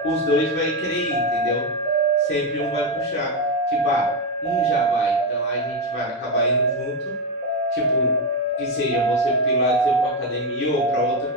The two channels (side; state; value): both; normal; correlation 0.09